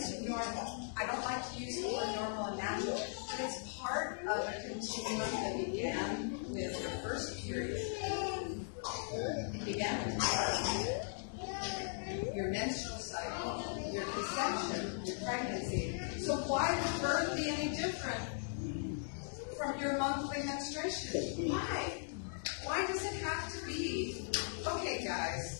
normal. I don't like to use the word normal and natural, but it's part of a continuum that began with your first period. It began with your menstrual cycle, your conception, your pregnancy. So why would birth be any different from your monthly menstruation? Why? Why does it have to be? Okay,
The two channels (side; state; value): right; silent; digital silence